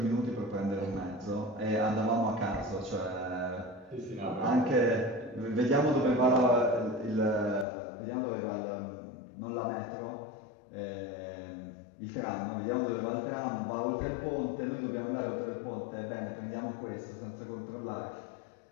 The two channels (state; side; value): drops out; right; at 7.7 s